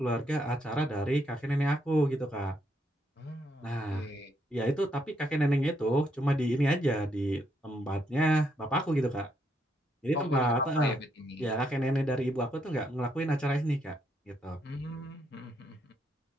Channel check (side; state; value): both; normal; correlation 0.76